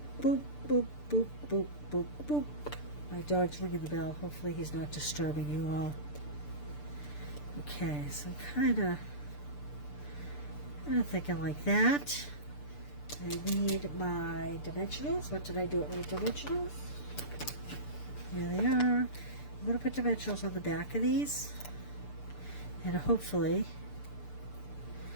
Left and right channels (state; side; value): late; right; 6.8 ms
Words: boop, boop, boop, boop, boop, boop. My dog's ringing the bell. Hopefully he's not disturbing you all. Okay, so I'm kind of thinking like that. I need my dimensionals. What did I do with my dimensionals? Here they are. I'm going to put dimensionals on the back of these. And hopefully